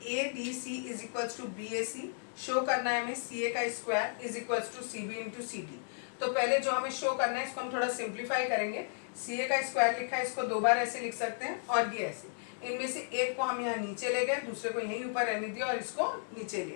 ADC is equals to BAC. Show करना है हमें CA का square is equals to CB into CD. तो पहले जो हमें शो करना है इसको हम थोड़ा सिंप्लीफाई करेंगे. CA का स्क्वायर लिखा है, इसको दो बार ऐसे लिख सकते हैं और ये ऐसे. इनमें से एक को हम यहाँ नीचे ले गए, दूसरे को यहीं ऊपर रहने दिया और इसको नीचे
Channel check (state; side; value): silent; right; digital silence